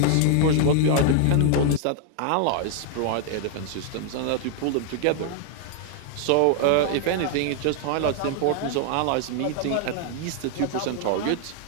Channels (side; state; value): both; different; correlation 0.00